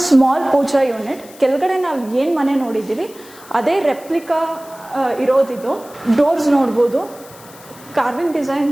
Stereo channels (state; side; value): noise; left; hiss, 21 dB below the sound